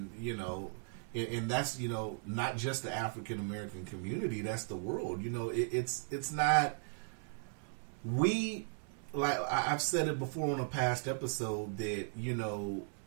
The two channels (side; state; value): left; silent; 53 dB below the other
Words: and that's not just the African American community, that's the world. It's not, we, like I've said it before on a past episode, that